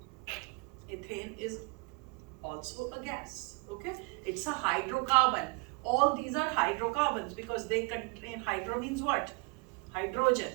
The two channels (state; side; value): quieter; left; 30.2 dB